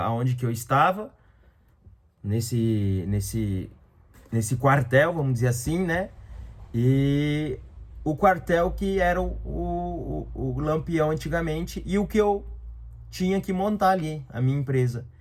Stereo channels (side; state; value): both; identical; correlation 1.00